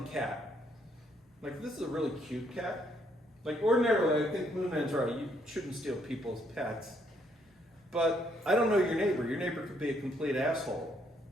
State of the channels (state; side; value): normal; both; correlation 0.70